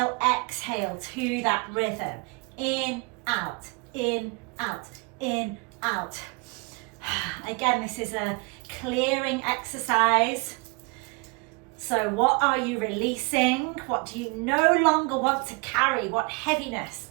exhale to that rhythm. In, out, in, out, in, out. Again, this is a clearing exercise. So what are you releasing? What do you no longer want to carry? What heaviness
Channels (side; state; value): left; quieter; 30.3 dB